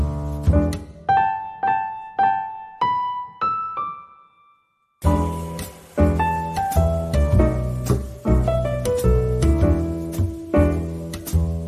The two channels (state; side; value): identical; both; correlation 1.00